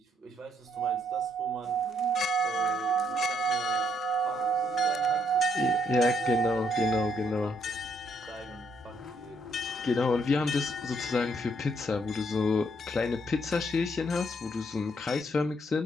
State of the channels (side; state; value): both; normal; correlation 0.71